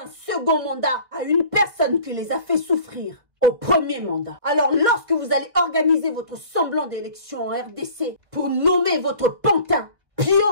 second mandat à une personne qui les a fait souffrir au premier mandat. Alors lorsque vous allez organiser votre semblant d'élection en RDC pour nommer votre pantin,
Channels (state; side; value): late; left; 1.4 ms